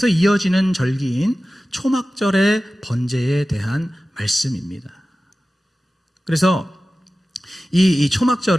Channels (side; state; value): both; normal; correlation 0.95